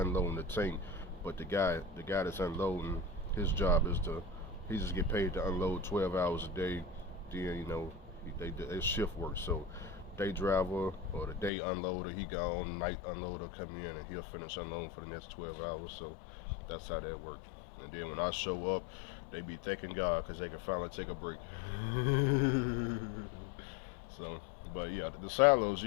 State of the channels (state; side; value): drops out; right; at 11.5 s